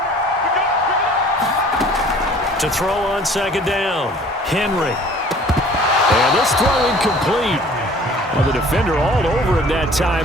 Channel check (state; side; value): normal; both; correlation 0.51